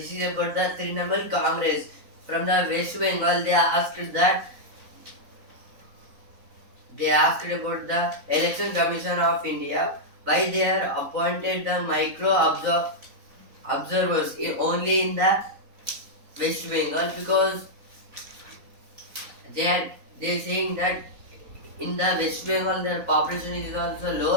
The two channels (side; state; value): left; late; 4.1 ms